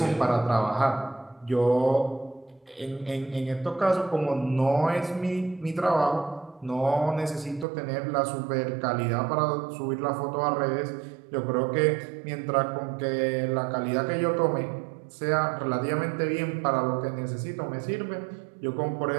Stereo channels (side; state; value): left; drops out; at 7.7 s